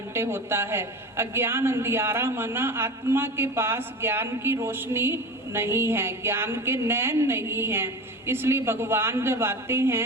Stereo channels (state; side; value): normal; both; correlation 0.31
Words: होता है। अज्ञान अंधियारा माना आत्मा के पास ज्ञान की रोशनी नहीं है, ज्ञान के नैन नहीं है। इसलिए भगवान जब आते